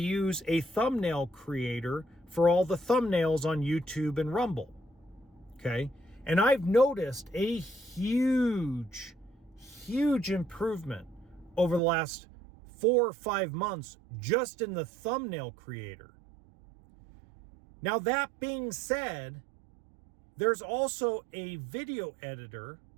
a thumbnail creator for all the thumbnails on YouTube and Rumble. Okay? And I've noticed a huge improvement over the last 4 or 5 months just in the thumbnail creator. Now, that being said, there's also a video editor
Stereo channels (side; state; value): left; drops out; at 11.8 s